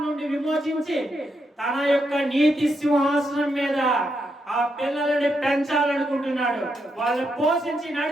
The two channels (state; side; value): normal; both; correlation 0.81